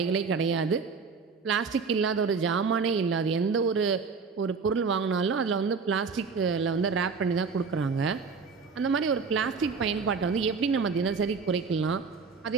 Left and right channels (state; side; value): quieter; left; 5.1 dB